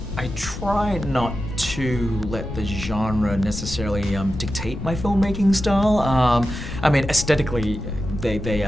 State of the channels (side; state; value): left; noise; rumble, 9 dB below the sound